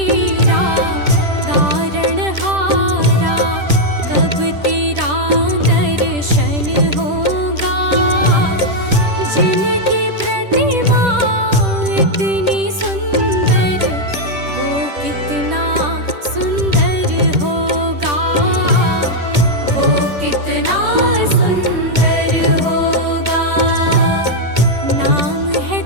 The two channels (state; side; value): late; left; 10 ms